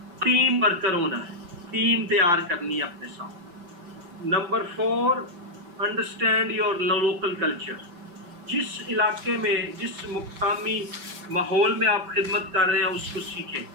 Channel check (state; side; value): late; left; 5.9 ms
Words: ٹیم ورکر ہونا ہے, ٹیم تیار کرنی ہے اپنے ساتھ. Number 4, understand your local culture. جس علاقے میں جس مقامی ماحول میں آپ خدمت کر رہے ہیں اس کو سیکھیں.